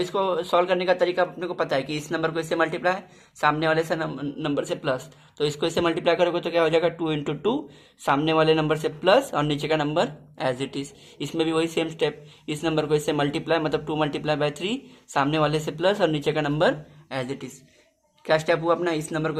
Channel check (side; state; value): both; identical; correlation 1.00